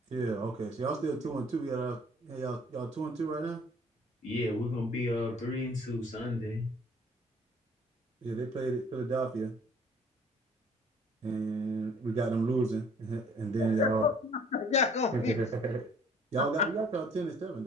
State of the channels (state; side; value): normal; both; correlation 0.56